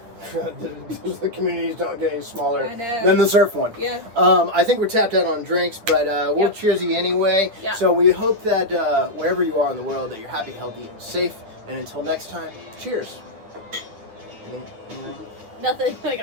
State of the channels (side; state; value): left; late; 9.2 ms